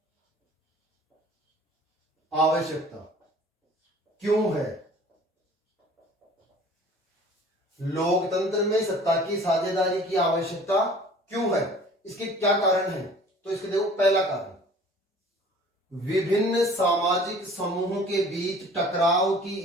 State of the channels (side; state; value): both; normal; correlation 0.49